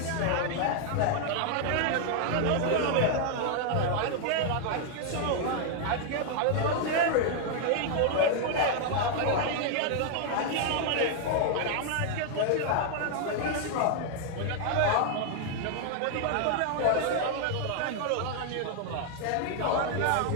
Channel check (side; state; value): both; different; correlation 0.00